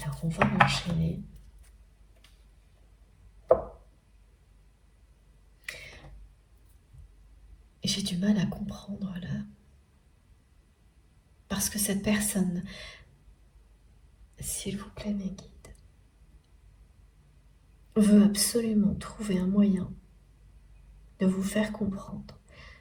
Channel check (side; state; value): both; identical; correlation 1.00